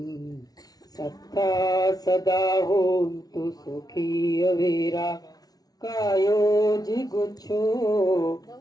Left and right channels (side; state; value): right; late; 0.19 ms